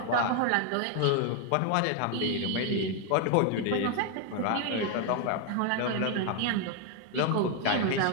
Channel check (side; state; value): both; different; correlation 0.01